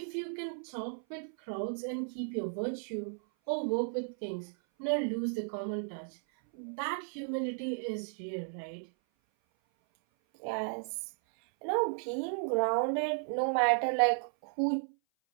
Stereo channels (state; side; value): silent; left; 55 dB below the other